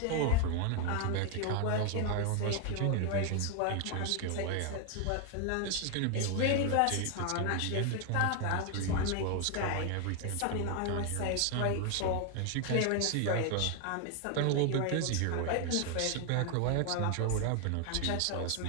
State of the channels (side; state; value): both; different; correlation 0.00